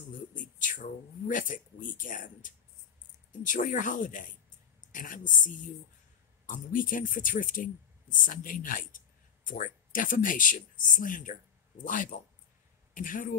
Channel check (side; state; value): right; quieter; 7.8 dB